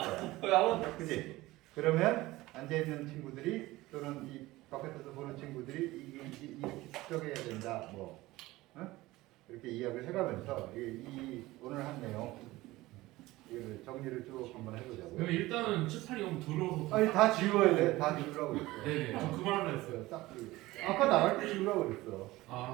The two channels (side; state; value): left; quieter; 18.7 dB